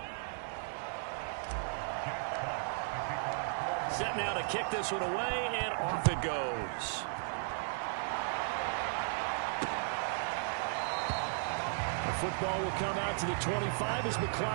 Set now to kick this one away, and off it goes. The football will come out to the 25 as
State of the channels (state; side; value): silent; left; 54 dB below the other